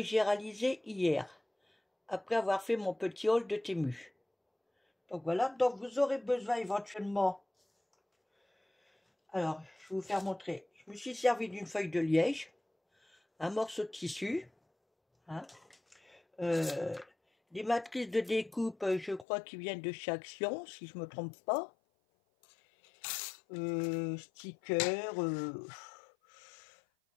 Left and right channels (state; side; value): drops out; right; at 19.2 s